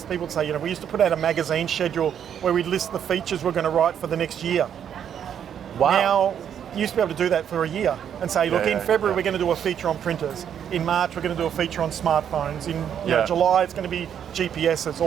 people would say, we used to put out a magazine schedule where we'd list the features we're going to write for the next year. Wow. Now, you used to be able to do that for a year and say, look, in February we're going to do a feature on printers. In March we're going to do a feature on smartphones. In July it's going to be GPSs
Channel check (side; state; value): left; quieter; 8.9 dB